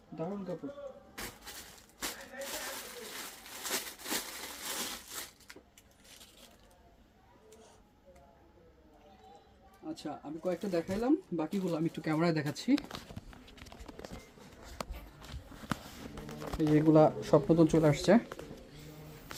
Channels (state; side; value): identical; both; correlation 1.00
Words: দারুণ কাপড়। আচ্ছা, আমি কয়েকটা দেখাইলাম, বাকিগুলো আমি একটু ক্যামেরায় দেখাচ্ছি। এই যেগুলা সব নতুন চলে আসছে।